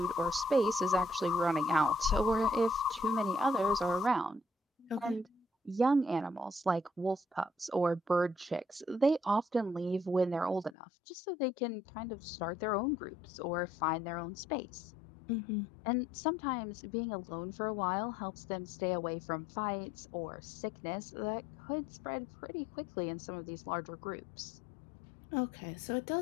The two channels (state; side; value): drops out; right; at 10.8 s